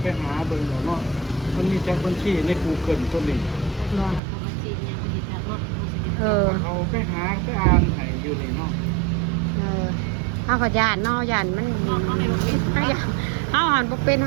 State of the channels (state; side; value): drops out; left; at 4.2 s